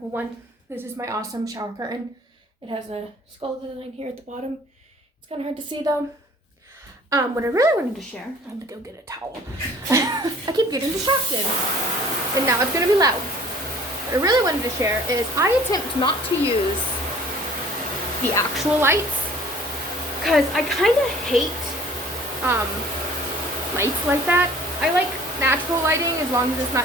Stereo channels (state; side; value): normal; both; correlation 0.52